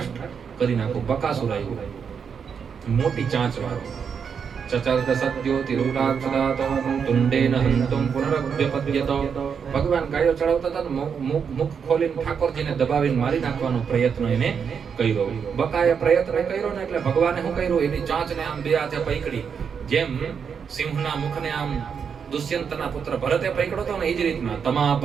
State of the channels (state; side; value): quieter; left; 6.7 dB